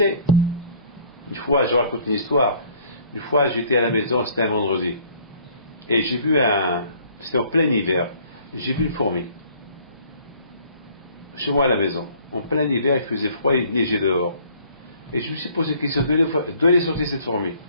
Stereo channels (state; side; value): inverted; both; correlation -0.57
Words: Une fois, je raconte une histoire. Une fois, j'étais à la maison, c'était un vendredi. Et j'ai vu c'était en plein hiver, j'ai vu une fourmi. Chez moi à la maison. En plein hiver, il faisait froid, il neigeait dehors. Et je me suis posé la question, d'où elle est sortie cette fourmi?